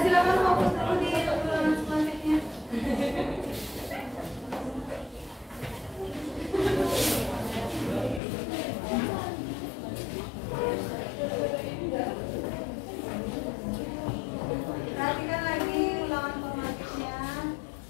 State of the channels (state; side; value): drops out; right; at 8.2 s